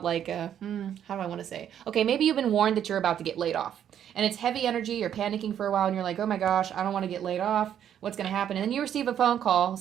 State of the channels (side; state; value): left; quieter; 9.7 dB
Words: like, how do I want to say? Okay, maybe you've been warned that you're about to get laid off, and it's heavy energy. You're panicking for a while, and you're like, oh my gosh, I don't want to get laid off. What's going to happen? And then you receive a phone call